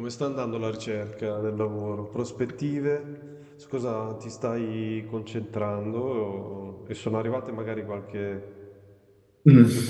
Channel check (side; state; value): both; identical; correlation 1.00